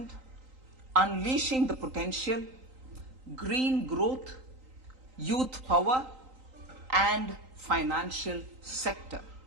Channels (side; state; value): left; late; 3.9 ms